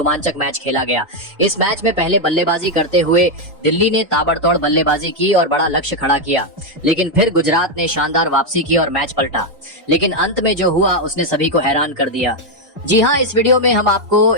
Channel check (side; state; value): both; normal; correlation 0.02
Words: मैच खेला गया। इस मैच में पहले बल्लेबाजी करते हुए दिल्ली ने ताबड़तोड़ बल्लेबाजी की और बड़ा लक्ष्य खड़ा किया, लेकिन फिर गुजरात ने शानदार वापसी की और मैच पलटा। लेकिन अंत में जो हुआ उसने सभी को हैरान कर दिया। जी हाँ, इस वीडियो में हम आपको